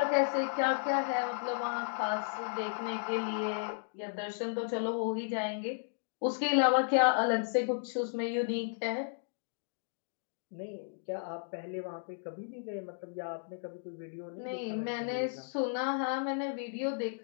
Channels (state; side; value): silent; right; digital silence